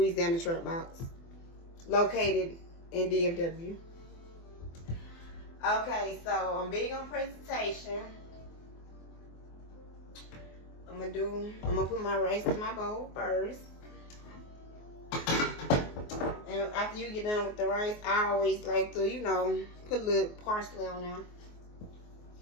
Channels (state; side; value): late; right; 24 ms